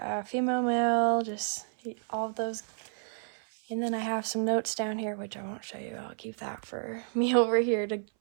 female, male, just all of those. And then I have some notes down here, which I won't show you. I'll keep that for me over here to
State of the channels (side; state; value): left; silent; 57 dB below the other